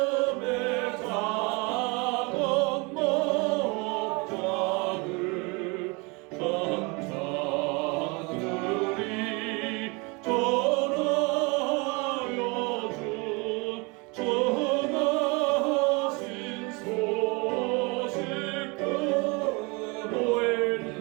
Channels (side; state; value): left; quieter; 28.7 dB